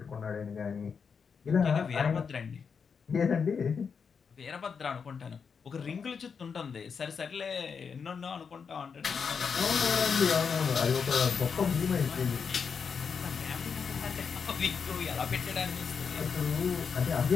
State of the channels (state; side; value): quieter; right; 6.1 dB